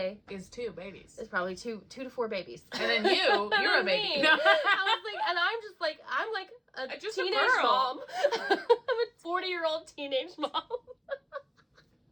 is 2 babies. Is probably 2 to 4 babies. And then you're a baby. I was like, and I'm like a just teenage a girl. mom. I'm a 40-year-old teenage mom.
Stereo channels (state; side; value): identical; both; correlation 1.00